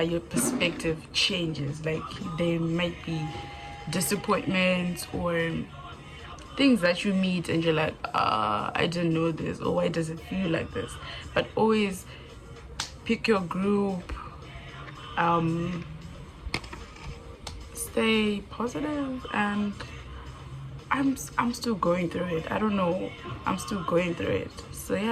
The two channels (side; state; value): both; identical; correlation 1.00